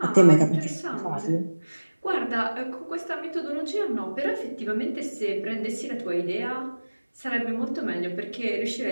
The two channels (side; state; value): both; inverted; correlation -1.00